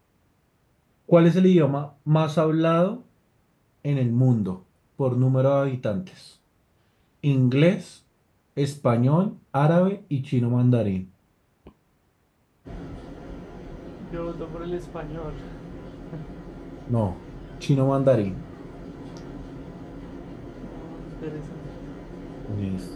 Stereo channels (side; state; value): both; identical; correlation 1.00